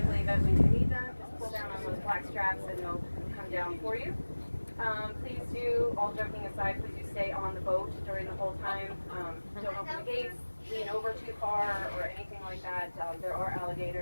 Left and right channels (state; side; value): inverted; both; correlation -1.00